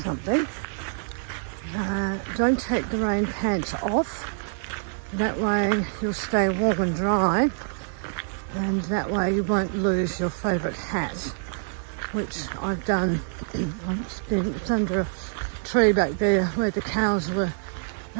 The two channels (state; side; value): silent; left; digital silence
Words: Don't take the rain pants off. That way you'll stay warm and dry, and that way you won't lose your favourite hat, which I've done. It's under a tree back there where the cows were,